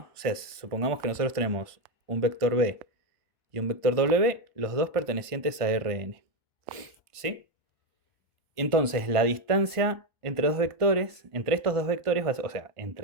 O sea, supongamos que nosotros tenemos un vector B y un vector W, los dos pertenecientes a Rn. ¿Sí? Entonces, la distancia entre dos vectores, entre estos dos vectores, o sea,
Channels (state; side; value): late; left; 1.5 ms